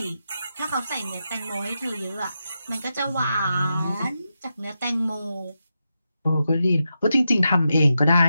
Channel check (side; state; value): both; inverted; correlation -0.88